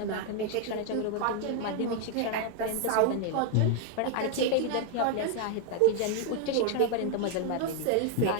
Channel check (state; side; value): different; both; correlation 0.00